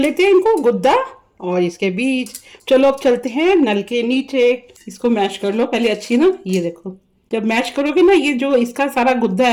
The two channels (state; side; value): identical; both; correlation 1.00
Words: हैं, इनको गुद्दा और इसके बीज। चलो अब चलते हैं नल के नीचे। इसको मैश कर लो पहले अच्छी ना। ये देखो, जब मैश करोगे ना, ये जो इसका सारा गुद्दा